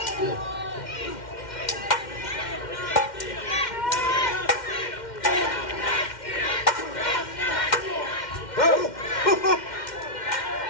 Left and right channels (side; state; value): right; late; 2.1 ms